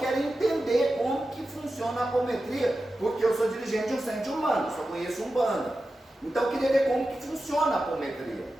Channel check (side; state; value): both; normal; correlation 0.92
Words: entender como que funciona a apometria, porque eu sou dirigente de um centro de Umbanda, só conheço Umbanda. Então eu queria ver como que funciona a apometria.